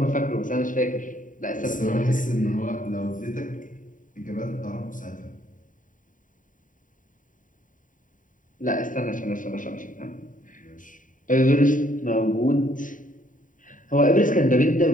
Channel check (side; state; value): right; late; 0.38 ms